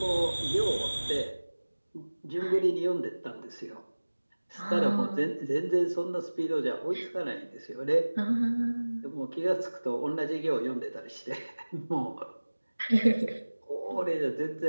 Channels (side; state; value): both; inverted; correlation -1.00